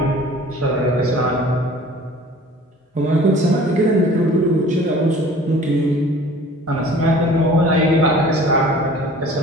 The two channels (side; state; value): both; normal; correlation 0.47